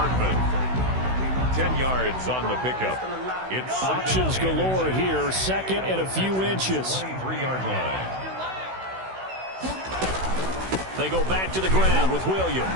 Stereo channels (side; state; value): left; late; 16 ms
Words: 10 yards on the pickup. It's options galore here. Second and a few inches. 23-yard line. They go back to the ground with